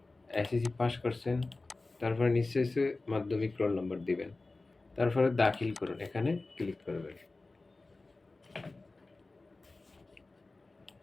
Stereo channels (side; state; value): right; quieter; 3.3 dB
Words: এসএসসি পাস করছেন। তারপরে নিচে এসে মাধ্যমিক রোল নাম্বার দিবেন। তারপরে দাখিল করুন, এখানে ক্লিক করবেন।